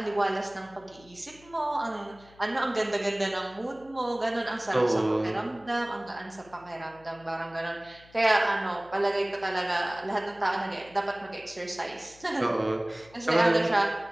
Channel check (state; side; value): noise; left; hum, 25 dB below the sound